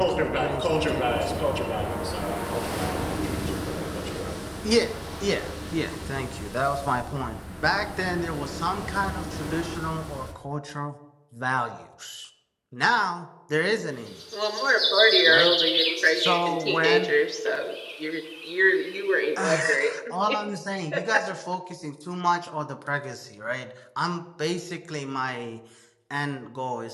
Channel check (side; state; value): both; identical; correlation 1.00